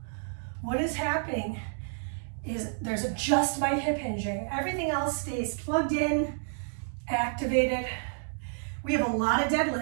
What is happening is there's just my hip hinging. Everything else stays plugged in, activated. We have a lot of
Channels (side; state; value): left; silent; digital silence